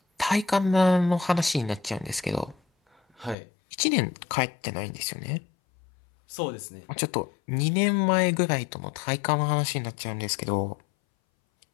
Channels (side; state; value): right; drops out; at 3.4 s